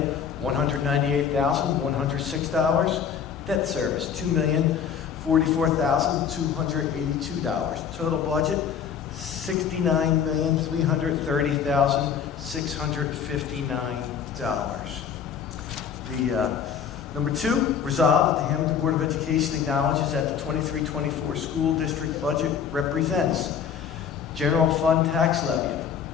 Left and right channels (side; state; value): right; quieter; 7.6 dB